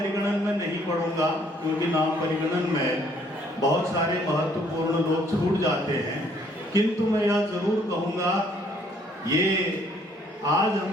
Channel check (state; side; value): normal; both; correlation 0.64